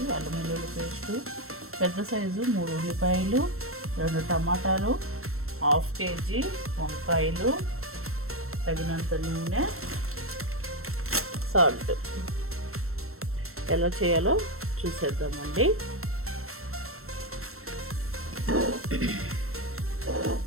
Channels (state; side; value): late; left; 0.62 ms